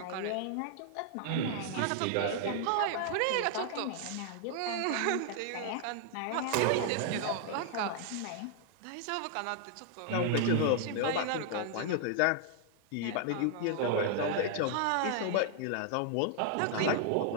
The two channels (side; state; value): both; different; correlation -0.01